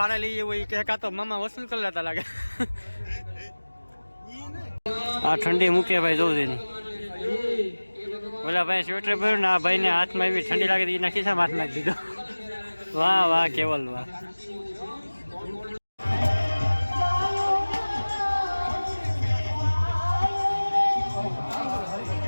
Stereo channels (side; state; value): both; inverted; correlation -1.00